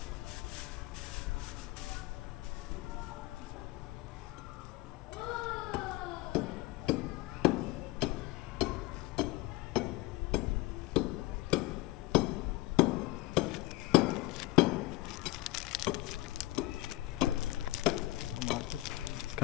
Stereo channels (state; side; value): quieter; right; 19.4 dB